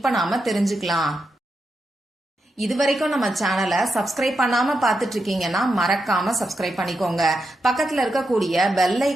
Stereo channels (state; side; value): normal; both; correlation 0.86